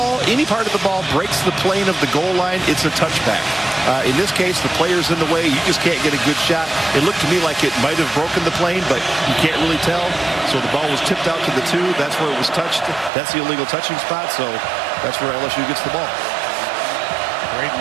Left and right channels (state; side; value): drops out; left; at 13.1 s